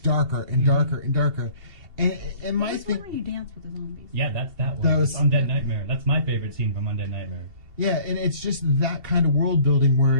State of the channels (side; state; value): left; late; 2.7 ms